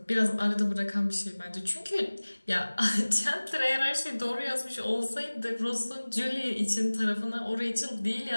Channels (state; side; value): inverted; both; correlation -1.00